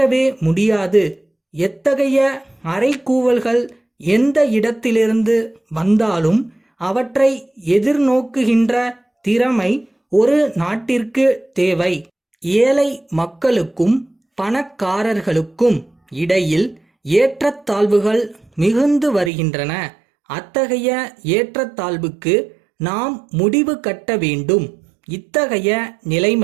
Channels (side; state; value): left; drops out; at 19.3 s